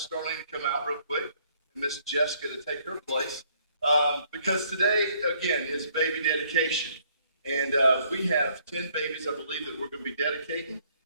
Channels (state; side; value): inverted; both; correlation -0.65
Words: Darlene, to come out real quick, and Miss Jessica to take her place, because today, again, is baby dedication. And we have 10 babies, I believe, that we're going to be dedicating.